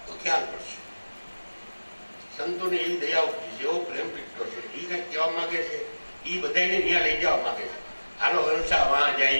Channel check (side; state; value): both; inverted; correlation -1.00